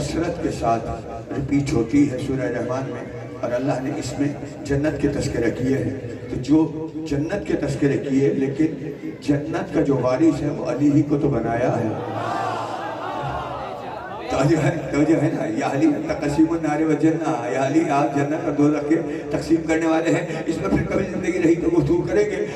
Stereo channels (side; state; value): both; identical; correlation 1.00